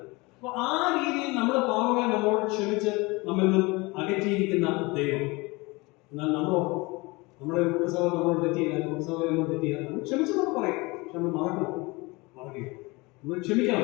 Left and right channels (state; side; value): quieter; right; 24.6 dB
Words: അപ്പൊ ആ രീതിയിൽ നമ്മുടെ പാവങ്ങളെ നമ്മളോട് ക്ഷമിച്ച് നമ്മിൽ നിന്നും അകറ്റിയിരിക്കുന്ന ദൈവം. എന്നാൽ നമ്മുടെ കുടുംബസഭ നമ്മളോട് തെറ്റിയില്ല, കുടുംബസഭ നമ്മൾ തെറ്റിയില്ല, നമ്മൾ ക്ഷമിച്ചെന്നൊക്കെ പറയും. പക്ഷെ നമ്മൾ മറക്കുക, നമ്മൾ